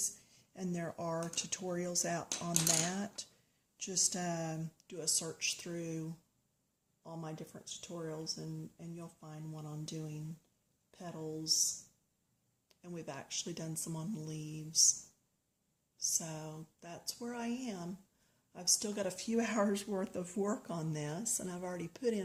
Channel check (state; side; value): identical; both; correlation 1.00